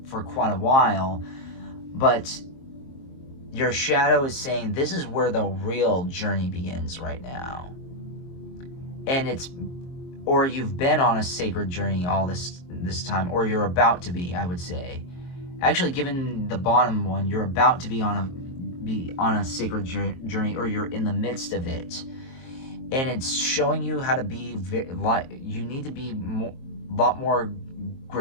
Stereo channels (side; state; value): right; late; 23 ms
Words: while, but your shadow is saying this is where the real journey begins right now. And or you've been on a sacred journey all this time, or you're about to be, I would say. Actually, given the bottom one, you're about to be on a sacred journey, or you're in the midst of it. And it's showing you how to be, you need to be a lot more